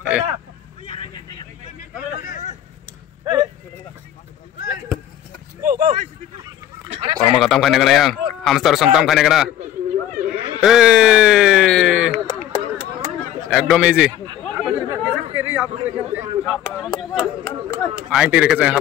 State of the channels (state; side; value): quieter; right; 11.8 dB